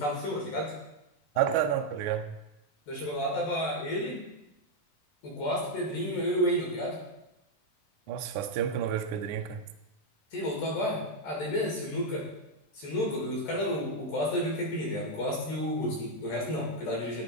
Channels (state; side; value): late; right; 13 ms